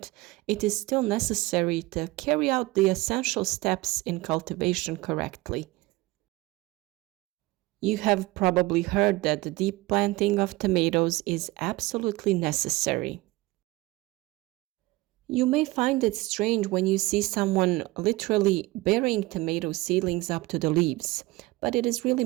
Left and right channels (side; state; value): left; quieter; 20.6 dB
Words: it is still necessary to carry out the essential steps in cultivation correctly. You have probably heard that the deep planting of tomatoes is absolutely necessary. You may find it strange when you see someone literally burying tomato seedlings up to the leaves, but it is really